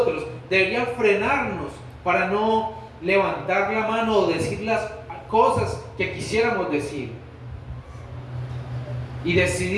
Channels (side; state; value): both; identical; correlation 1.00